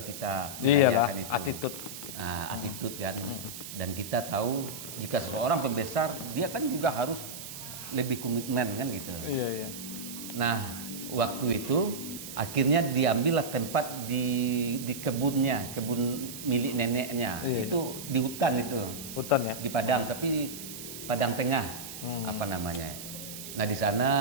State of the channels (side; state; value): right; noise; hiss, 10 dB below the sound